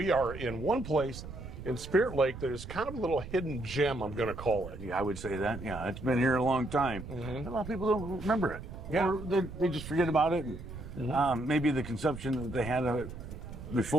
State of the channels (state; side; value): noise; right; rumble, 11 dB below the sound